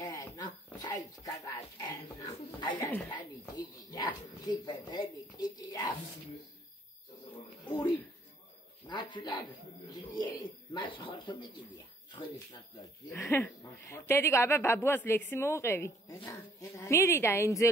سایت کارا چنا آیاتانی کیدیا سیپردی کیدیا اوری ناتولاد کیدی ماس خورتو میگیدیا خودش ناتولاد دیگه ابا بابواس لکسی موقعی میری دا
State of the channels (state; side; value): normal; both; correlation 0.61